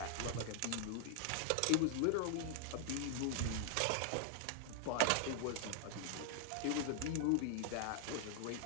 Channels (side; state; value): both; different; correlation 0.00